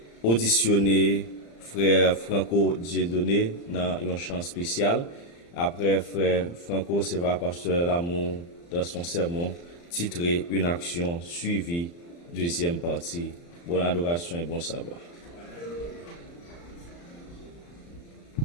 auditionner frère Franco Dieudonné dans un chant spécial. Après, frère Franco, c'est va pasteur Lamour dans son sermon titré Une action suivie, deuxième partie. Bonne adoration et bon sabbat.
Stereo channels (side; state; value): right; late; 35 ms